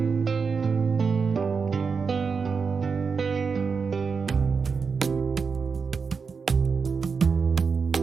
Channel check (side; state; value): left; quieter; 5.4 dB